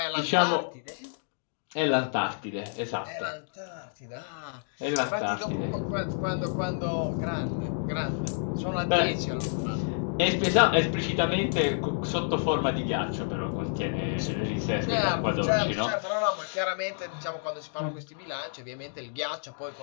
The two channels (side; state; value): right; silent; digital silence